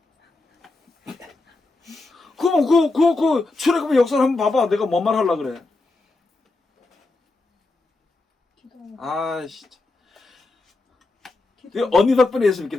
그럼 그 출애굽의 역사를 한번 봐봐. 내가 뭔 말 하려고 그래? 아, 진짜. 언니 덕분에 예수 믿게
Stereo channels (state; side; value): quieter; right; 3.3 dB